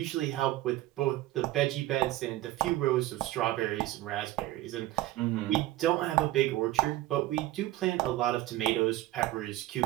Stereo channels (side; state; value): left; quieter; 16.1 dB